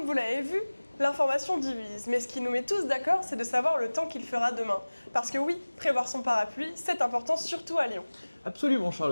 vous l'avez vu, l'information divise, mais ce qui nous met tous d'accord, c'est de savoir le temps qu'il fera demain. Parce que oui, prévoir son parapluie, c'est important, surtout à Lyon. Absolument,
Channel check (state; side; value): inverted; both; correlation -1.00